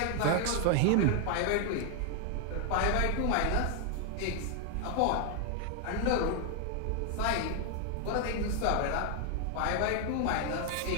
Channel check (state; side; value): different; both; correlation 0.00